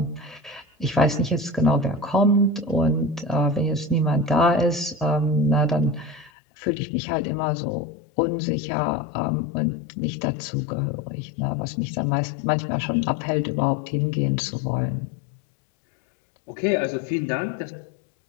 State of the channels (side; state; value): right; drops out; at 6.3 s